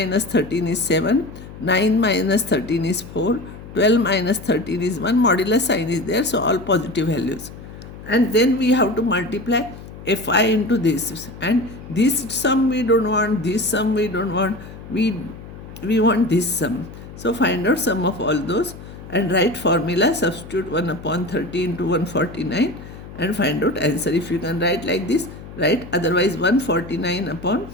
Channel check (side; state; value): left; noise; hum, 15 dB below the sound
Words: 13 is 7. 9 minus 13 is 4. 12 minus 13 is 1. Modular sign is there, so all positive values. And then we have to multiply Fi into this. And this sum we don't want, this sum we don't want. We want this sum. So find out sum of all those and write formula, substitute 1 upon 30 into 149 and find out answer. If you can write like this, write. Otherwise 149 upon